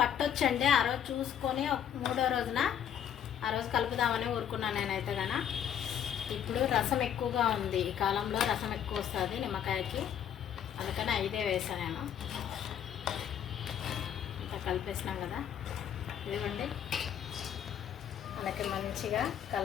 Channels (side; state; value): right; quieter; 9.3 dB